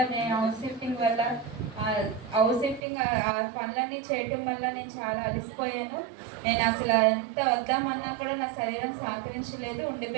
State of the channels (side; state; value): left; drops out; at 2.8 s